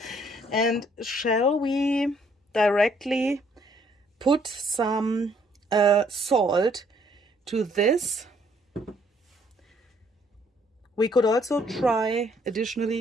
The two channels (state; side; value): normal; both; correlation 0.65